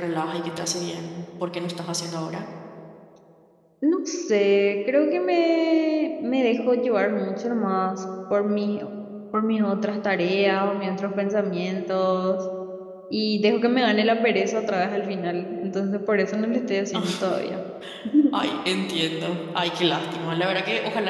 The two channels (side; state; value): both; identical; correlation 1.00